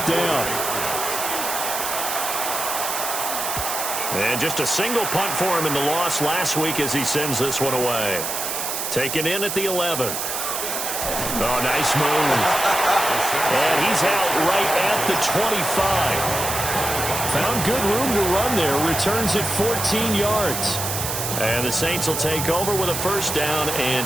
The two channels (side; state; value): right; noise; hiss, 3 dB below the sound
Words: down. And just a single punt for him in the loss last week as he sends this one away. Taken in at the 11. Oh, nice move. And he's out right at the 25. Found good room to run there. Returns at 14 yards. And the Saints will take over with a first down